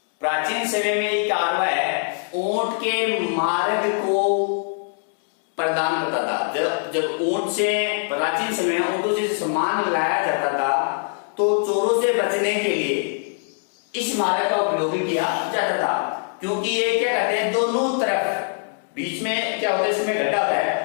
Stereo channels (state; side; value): silent; right; 59 dB below the other